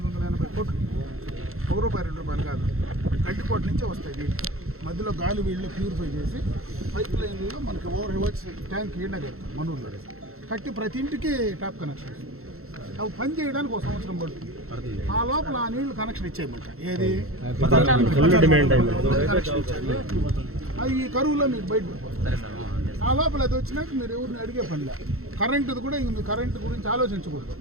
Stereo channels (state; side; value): late; left; 0.62 ms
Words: కోట్లు, ₹1 ₹2 కాదు, గడ్డికోట నుంచే వస్తాయి నీళ్ళు. మధ్యలో గాలి వీళ్ళు ప్యూరిఫై చేసి పైప్ లైన్లో మనకి ఓవర్ హెడ్ ట్యాంక్ ఈడ కడతాం. మనూరులో కట్టి ప్రతి ఇంటికి ట్యాప్ కనెక్షన్. అవి పని చేయడానికి 1 సంవత్సరం పడుతుంది. ఆ లోపల ఆ నీళ్లు కనెక్షన్ ఇచ్చేయమంట. ఏది అది ఈ కరువులో మీకు బయట ఆ లోపల అది వచ్చినాక మీరు ఎవరిని అడిగే పనిలే. కరెంటుది కూడా ఇంక మీరు కరెంటు గురించి ఆలోచించకూడదు.